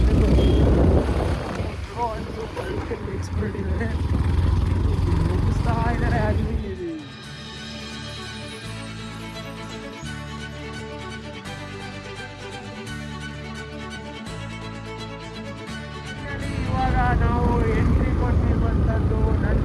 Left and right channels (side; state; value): both; identical; correlation 1.00